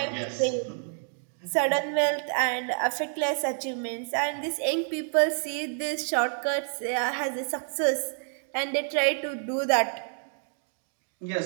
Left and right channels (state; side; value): silent; left; 59 dB below the other